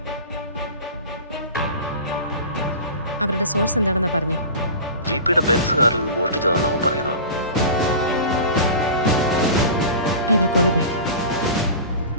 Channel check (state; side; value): inverted; both; correlation -0.34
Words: അവരുടെ സോഴ്സ് എന്താണെന്നാ പറഞ്ഞേ? GPയുടെ ബെൻസ് കാറിൽ നിന്ന് മോഷ്ടിച്ചതാണെന്ന് അവൻ പറയുന്നത്. I will call you back.